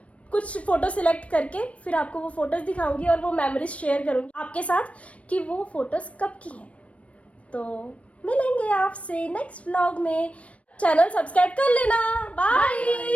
कुछ फोटो सिलेक्ट करके फिर आपको वो फोटोज दिखाऊंगी, और वो मेमोरीज शेयर करूंगी आपके साथ कि वो फोटोज कब की हैं। तो मिलेंगे आपसे नेक्स्ट व्लॉग में। चैनल सब्सक्राइब कर लेना।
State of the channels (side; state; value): right; late; 0.064 ms